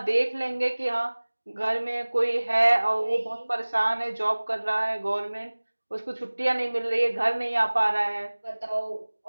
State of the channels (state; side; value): inverted; both; correlation -1.00